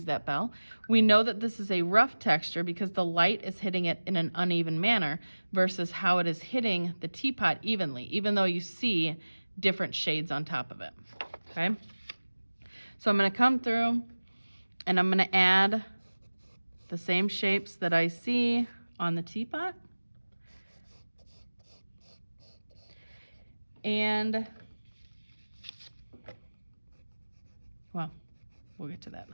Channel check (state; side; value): inverted; both; correlation -1.00